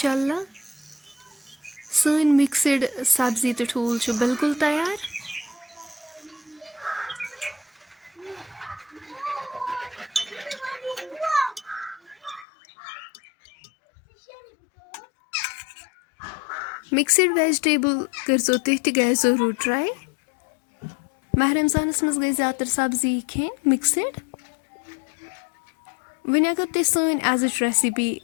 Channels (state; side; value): drops out; right; at 12.5 s